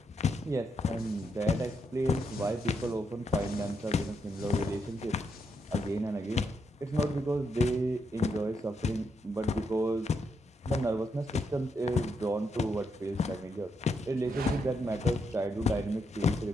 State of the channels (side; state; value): both; normal; correlation 0.80